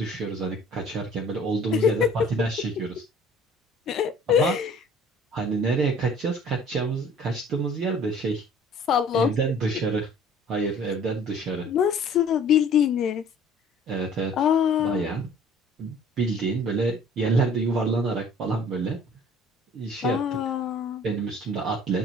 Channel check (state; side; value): normal; both; correlation 0.51